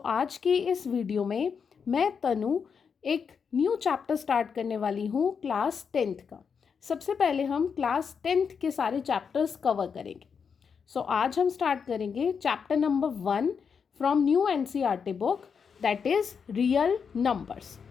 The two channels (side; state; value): right; quieter; 6.3 dB